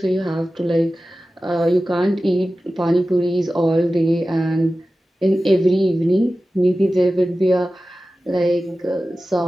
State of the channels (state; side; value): normal; both; correlation 0.95